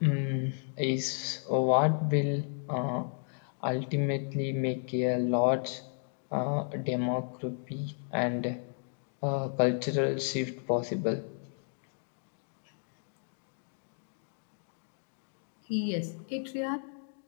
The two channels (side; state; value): right; silent; digital silence